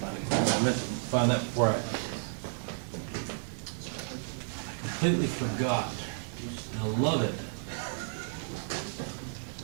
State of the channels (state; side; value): silent; left; digital silence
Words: it. I meant to find that before I completely forgot. I love it.